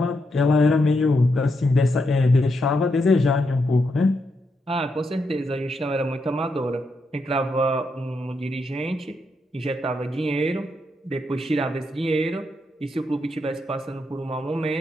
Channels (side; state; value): both; normal; correlation 0.82